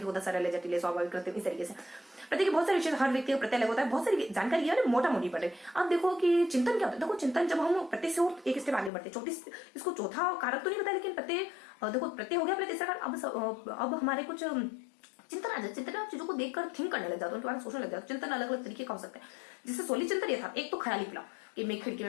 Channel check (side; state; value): right; drops out; at 8.9 s